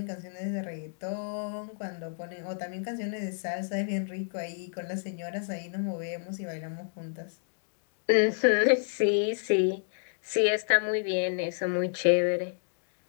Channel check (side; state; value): right; silent; digital silence